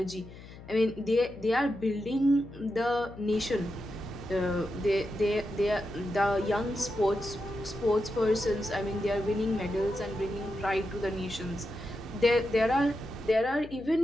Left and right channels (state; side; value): noise; left; hum, 17 dB below the sound